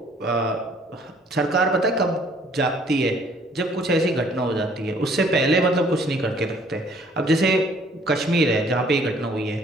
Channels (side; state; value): both; normal; correlation 0.59